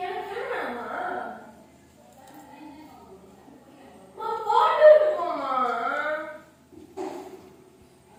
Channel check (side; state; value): both; identical; correlation 1.00